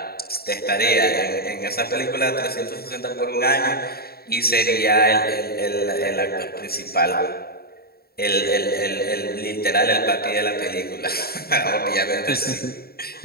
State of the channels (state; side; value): late; right; 0.45 ms